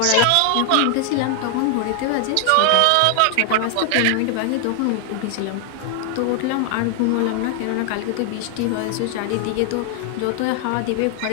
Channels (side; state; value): both; different; correlation 0.00